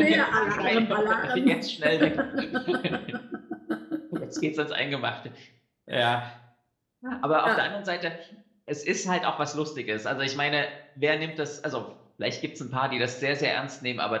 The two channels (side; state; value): both; identical; correlation 1.00